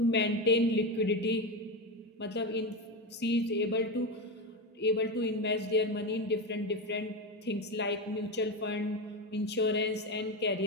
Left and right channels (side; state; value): both; normal; correlation 0.16